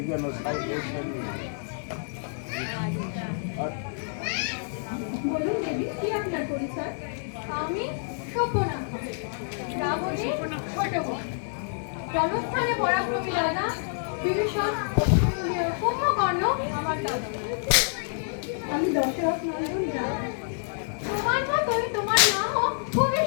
বলুন দেবী, কি আপনার পরিচয়? আমি সভ্যনাথা, রাবণের ছোট বোন। জনস্থানে পরাক্রমী রাজা বিভীষণ, কুম্ভকর্ণ আমার দাদা। আমি দশরথ নন্দন রায়। তোমার মতোই তোমার নামও খুবই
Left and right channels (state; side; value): silent; right; 60 dB below the other